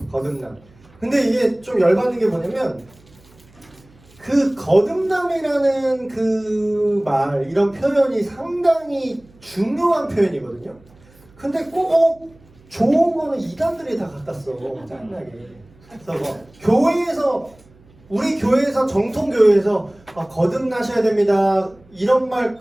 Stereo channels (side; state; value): right; noise; hum, 28 dB below the sound